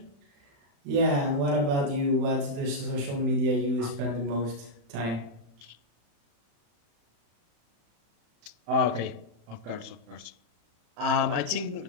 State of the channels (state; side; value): late; left; 35 ms